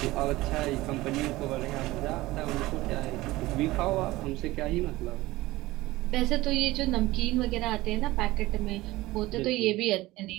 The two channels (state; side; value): quieter; left; 18.6 dB